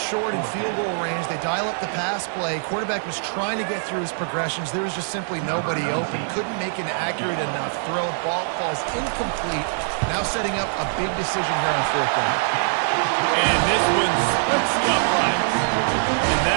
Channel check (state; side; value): silent; left; digital silence